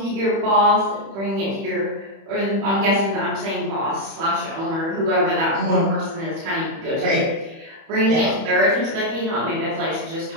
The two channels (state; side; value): late; left; 31 ms